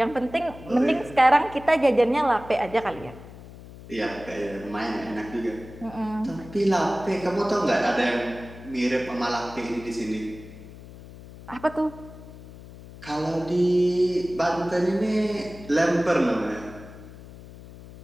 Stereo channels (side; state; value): left; noise; hum, 17 dB below the sound